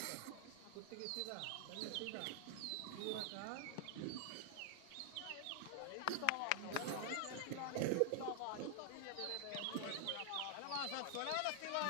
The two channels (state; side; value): different; both; correlation 0.00